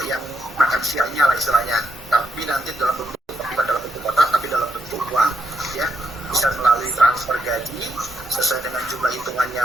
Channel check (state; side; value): normal; both; correlation 0.79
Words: yang makan siangnya lah istilahnya. Tapi nanti dalam bentuk bukan dalam bentuk kotak, tapi dalam bentuk uang, ya. Bisa melalui transfer gaji sesuai dengan jumlah hitungannya